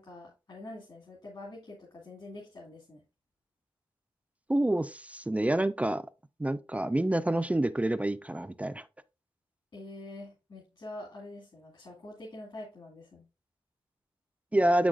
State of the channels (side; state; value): both; normal; correlation 0.96